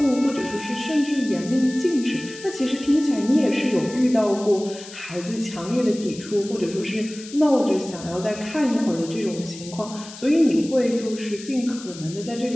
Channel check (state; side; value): noise; left; hiss, 15 dB below the sound